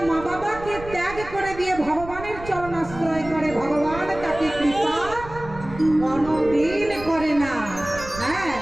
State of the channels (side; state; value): right; noise; rumble, 14 dB below the sound